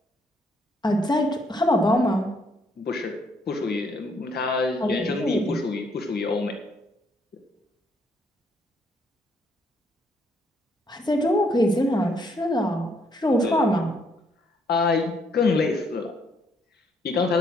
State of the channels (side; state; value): both; normal; correlation 0.70